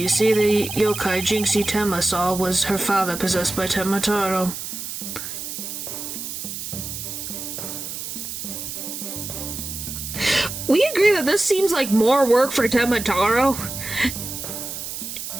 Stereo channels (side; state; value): right; noise; hiss, 7 dB below the sound